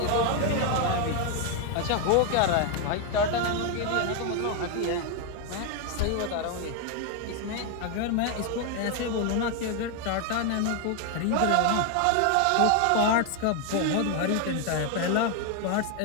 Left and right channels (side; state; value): both; different; correlation 0.01